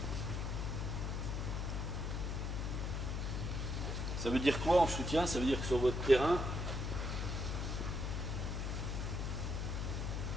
Ça veut dire quoi en soutien? Ça veut dire que sur votre terrain,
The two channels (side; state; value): left; noise; hum, 1 dB below the sound